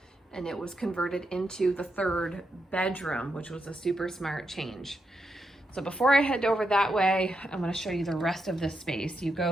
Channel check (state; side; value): normal; both; correlation 0.83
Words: and it was converted into the 3rd bedroom, which was a super smart change. So before I head over that way, I'm going to show you the rest of this space. You